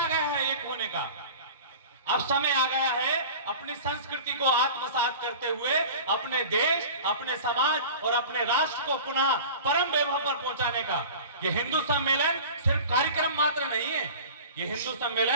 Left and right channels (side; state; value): both; inverted; correlation -0.38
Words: गया है एक होने का, अब समय आ गया है अपनी संस्कृति को आत्मसात करते हुए अपने देश, अपने समाज और अपने राष्ट्र को पुनः परम वैभव पर पहुंचाने का। यह हिंदू सम्मेलन सिर्फ कार्यक्रम मात्र नहीं है, यह हिंदू